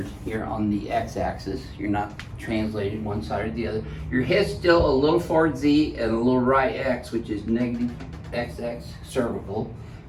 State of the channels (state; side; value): identical; both; correlation 1.00